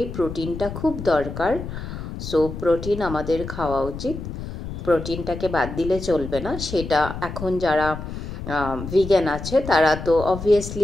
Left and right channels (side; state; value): left; noise; rumble, 8 dB below the sound